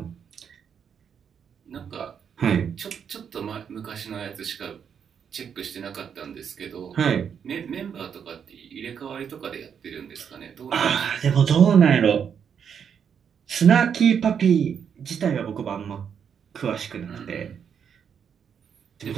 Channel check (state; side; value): quieter; left; 7.6 dB